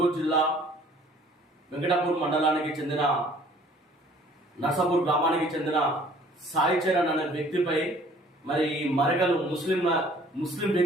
జిల్లా వెంకటాపూర్ మండలానికి చెందిన నర్సాపూర్ గ్రామానికి చెందిన సాయి చరణ్ అనే వ్యక్తిపై మరి మరకలు ముస్లిం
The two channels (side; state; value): both; normal; correlation 0.55